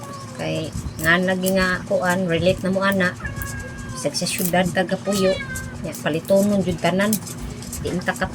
kay nga naging nga kuan relate na mo ana sag sa syudad Gapuyo ya palitonon jud tanan di inta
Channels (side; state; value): both; identical; correlation 1.00